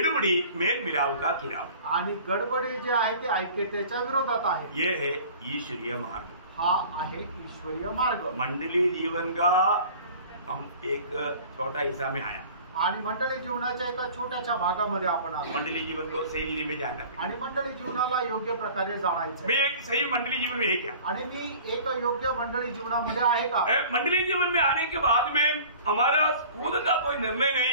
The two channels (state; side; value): inverted; both; correlation -0.45